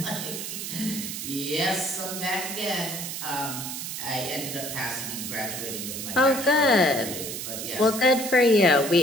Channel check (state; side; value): noise; right; hiss, 6 dB below the sound